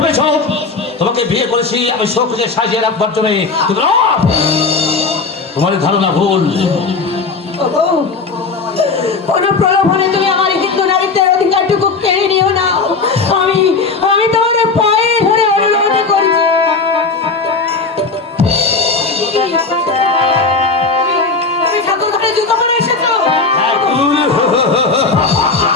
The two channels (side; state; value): right; quieter; 4.2 dB